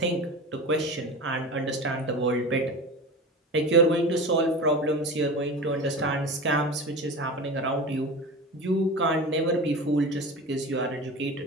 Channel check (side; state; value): both; normal; correlation 0.30